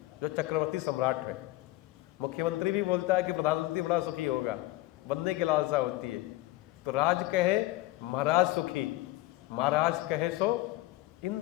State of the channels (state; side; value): quieter; right; 18.1 dB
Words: जो चक्रवर्ती सम्राट है। मुख्यमंत्री भी बोलता है कि प्रधानमंत्री बड़ा सुखी होगा, बनने की लालसा होती है। तो राज कहे महाराज सुखी, महाराज कहे सो